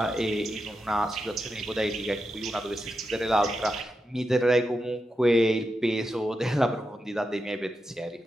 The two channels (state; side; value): normal; both; correlation 0.88